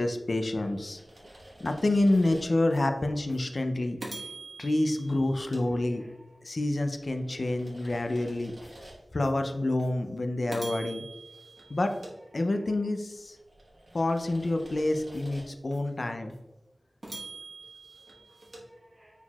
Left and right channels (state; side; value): normal; both; correlation 0.98